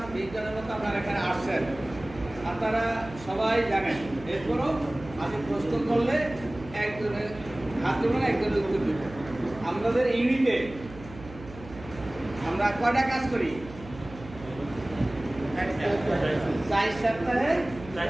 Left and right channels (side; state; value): right; noise; hum, 16 dB below the sound